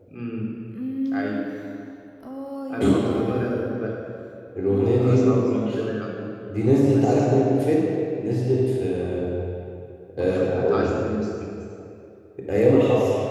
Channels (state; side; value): identical; both; correlation 1.00